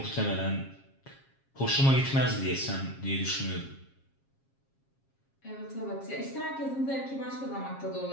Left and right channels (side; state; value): right; late; 7.4 ms